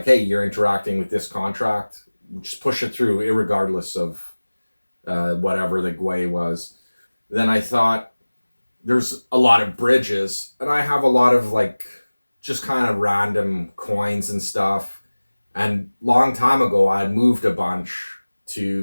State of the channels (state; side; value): inverted; both; correlation -1.00